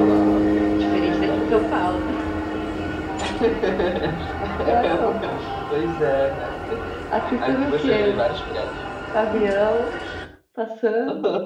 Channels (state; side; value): identical; both; correlation 1.00